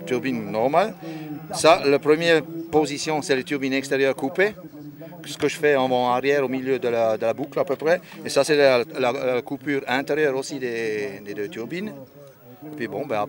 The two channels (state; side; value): identical; both; correlation 1.00